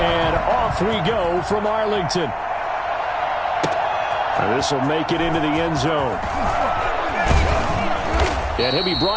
off we go from Arlington. This will make it into the end zone. And he'll be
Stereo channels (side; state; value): both; identical; correlation 1.00